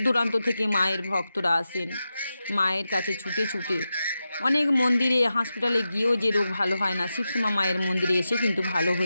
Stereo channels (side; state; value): both; inverted; correlation -0.91